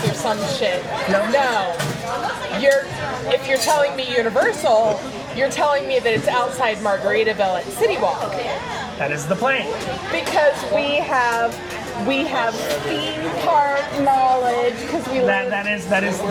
or some shit. No. If you're telling me Universal, you're telling me that it's outside Margaritaville at City Walk. That is the plane. Because we have theme park knowledge. Because we live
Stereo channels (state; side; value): identical; both; correlation 1.00